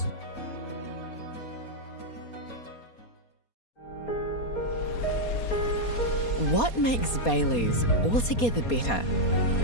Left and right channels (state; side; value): late; right; 4.2 ms